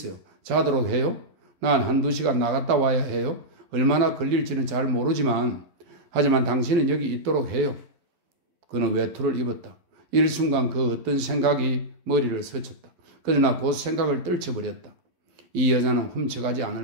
자도록 해요? 난 한두 시간 나갔다 와야 해요. 얼마나 걸릴지는 잘 모르지만 하지만 당신은 여기 있도록 해요. 그는 외투를 입었다. 일순간 그 어떤 생각이 머리를 스쳤다. 그러나 곧 생각을 떨쳐버렸다. 이 여자는 훔쳐가지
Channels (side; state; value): left; late; 12 ms